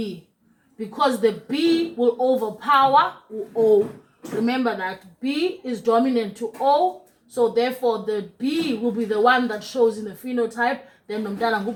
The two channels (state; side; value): identical; both; correlation 1.00